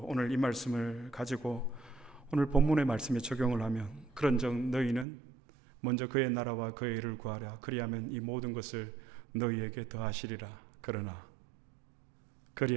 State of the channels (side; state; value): left; drops out; at 5.1 s